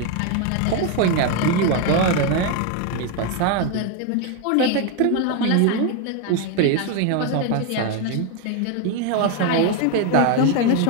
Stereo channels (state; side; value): different; both; correlation 0.01